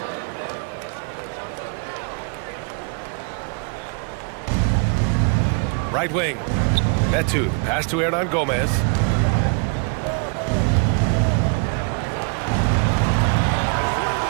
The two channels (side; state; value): left; quieter; 36.6 dB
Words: Right wing. Metu, the pass to Hernan Gomez.